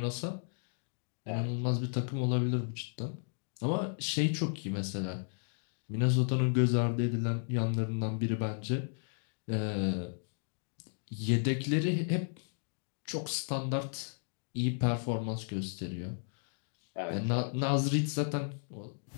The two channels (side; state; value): right; silent; digital silence